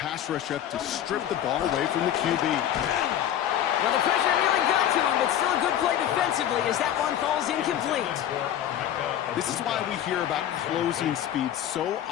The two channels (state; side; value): quieter; right; 10.9 dB